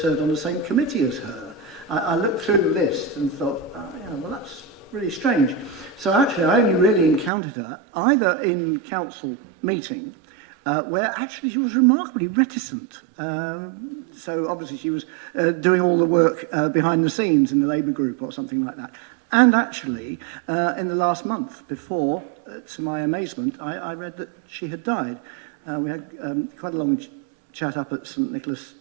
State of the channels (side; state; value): left; drops out; at 7.3 s